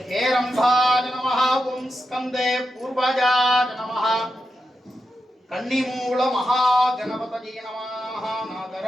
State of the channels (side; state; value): both; normal; correlation 0.87